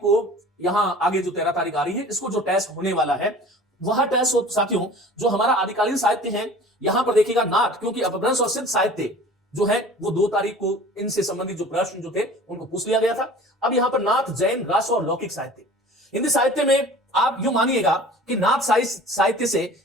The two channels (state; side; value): normal; both; correlation 0.44